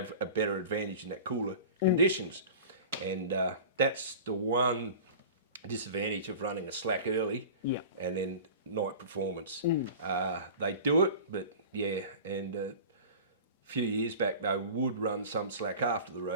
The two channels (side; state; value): both; inverted; correlation -0.37